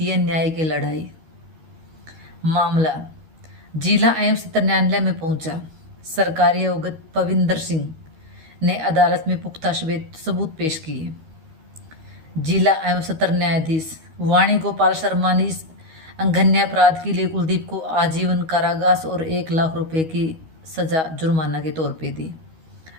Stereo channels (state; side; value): late; left; 13 ms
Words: है न्याय की लड़ाई। मामला जिला एवं सत्र न्यायालय में पहुंचा। सरकारी अवगत पविंदर सिंह ने अदालत में पुख्ता सबूत पेश किए। जिला एवं सत्र न्यायाधीश वाणी गोपाल शर्मा ने इस अंघन्य अपराध के लिए कुलदीप को आजीवन कारावास और 1 लाख रुपए की सजा जुर्माना के तौर पे दी।